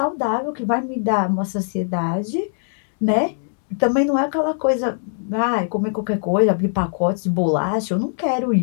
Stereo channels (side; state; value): right; silent; 65 dB below the other